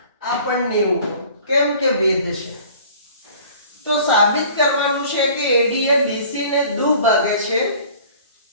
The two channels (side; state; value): both; inverted; correlation -0.48